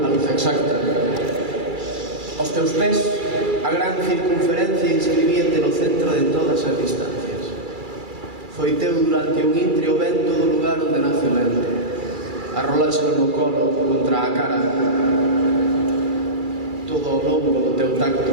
a luz exacta. Aos teus pés, a gran circunferencia inscribíate no centro de todas as distancias. Foi teu durante un intre o vento do lugar onde nace o vento. Arroláxelo no colo contra a cara, todo ao longo do teu tacto.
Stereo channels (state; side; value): late; left; 2.3 ms